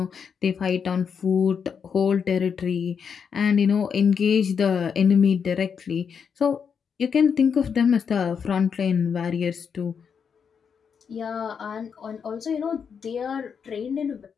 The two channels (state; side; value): quieter; right; 6.7 dB